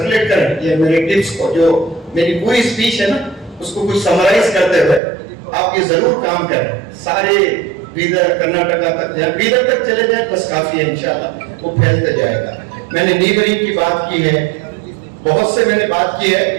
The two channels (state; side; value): drops out; left; at 5.0 s